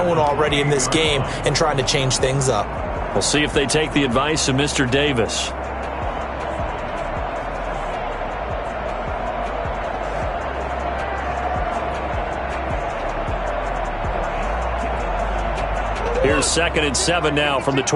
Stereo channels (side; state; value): both; identical; correlation 1.00